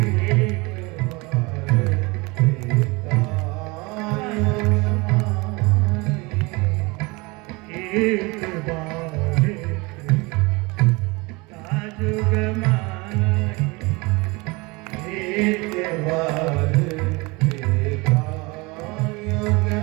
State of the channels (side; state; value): left; quieter; 25.6 dB